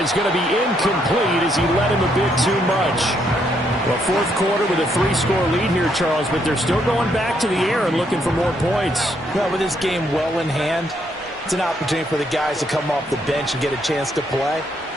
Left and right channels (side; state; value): both; normal; correlation 0.74